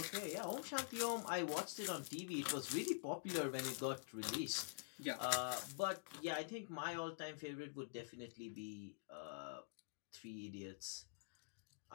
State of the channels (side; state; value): right; silent; digital silence